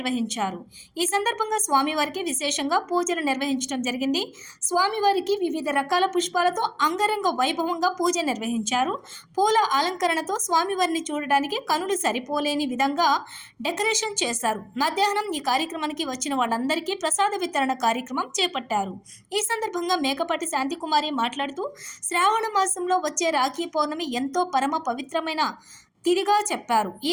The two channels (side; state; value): both; identical; correlation 1.00